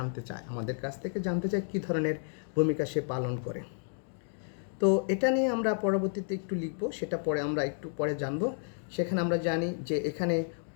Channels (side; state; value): right; silent; digital silence